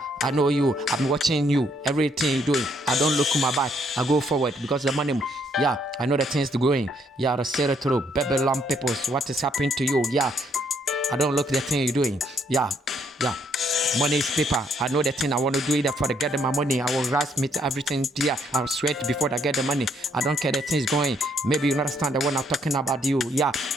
I know you. I'm watching you. Everything you doing. I don't look my back. I go forward because the money. Yeah, I know the things going. Yeah, the say it through. Babylon peoples, what is happening to you? Yeah, I don't look the thing you're doing. Yeah. Money is paper. I know the thing I want to do it for to get my money. I will rush me to everything here. I'll sweat before I get the money. I don't care the things going. Maybe you understand the one I'm talking about you. Yeah,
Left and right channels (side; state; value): both; normal; correlation 0.69